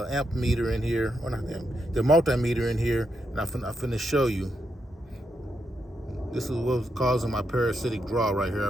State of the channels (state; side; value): normal; both; correlation 0.82